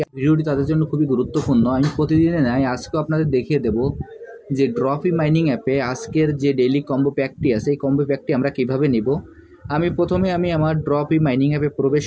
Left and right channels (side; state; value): both; identical; correlation 1.00